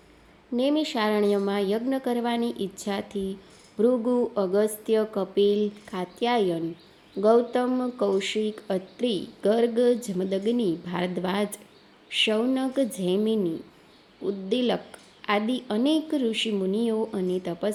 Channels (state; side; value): identical; both; correlation 1.00